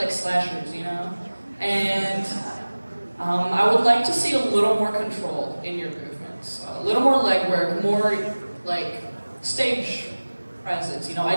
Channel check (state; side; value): inverted; both; correlation -1.00